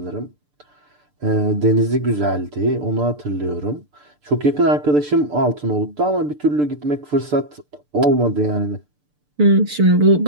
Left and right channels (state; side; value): late; left; 6.8 ms